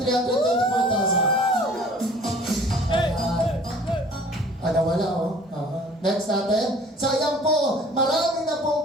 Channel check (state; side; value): normal; both; correlation 0.50